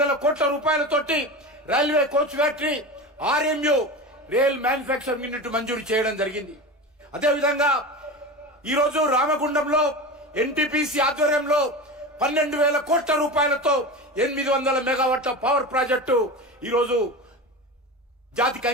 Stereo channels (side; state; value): both; normal; correlation 0.27